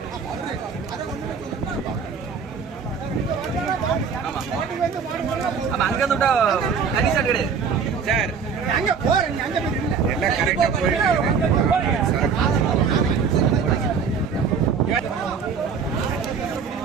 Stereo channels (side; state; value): left; quieter; 6.0 dB